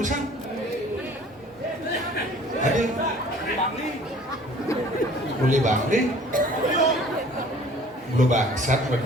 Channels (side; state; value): both; normal; correlation 0.51